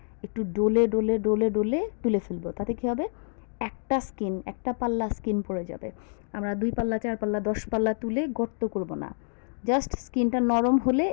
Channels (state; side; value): silent; right; 60 dB below the other